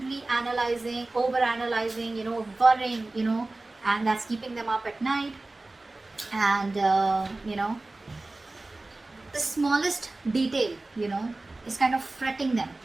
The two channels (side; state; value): left; quieter; 3.0 dB